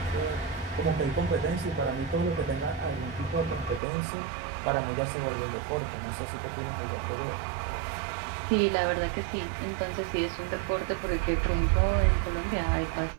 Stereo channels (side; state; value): left; drops out; at 3.8 s